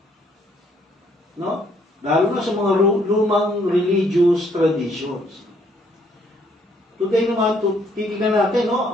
No? Lalo na sa mga lumang religious traditions. Today naman, titignan natin,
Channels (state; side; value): normal; both; correlation 0.67